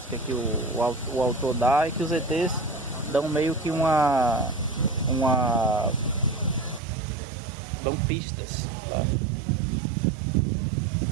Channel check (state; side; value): drops out; left; at 6.8 s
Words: que o autor dá, e que os ETs dão meio que dão pistas, tá?